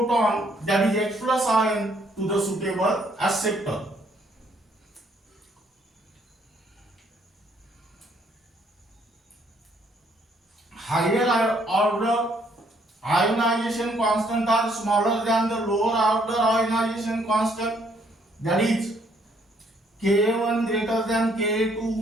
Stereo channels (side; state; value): both; normal; correlation 0.67